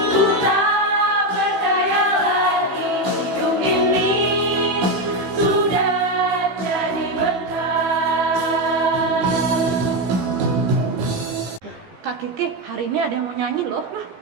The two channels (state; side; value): late; left; 15 ms